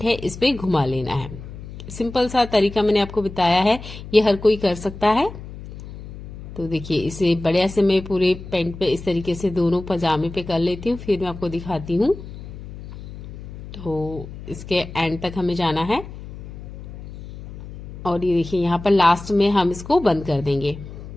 है इस पे घुमा लेना है। सिंपल सा तरीका मैंने आपको बताया है, ये हर कोई कर सकता है। तो देखिए, इसे बढ़िया से मैं पूरे पैंट पे इस तरीके से दोनों पजामे पे कर लेती हूँ, फिर मैं आपको दिखाती हूँ। तो इसके एंड तक हमें जाना है और ये देखिए, यहाँ पर लास्ट में हम इसको बंद कर देंगे।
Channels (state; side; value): noise; left; hum, 13 dB below the sound